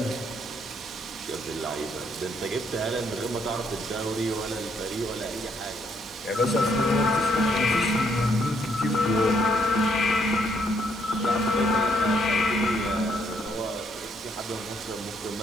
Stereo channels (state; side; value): normal; both; correlation 0.71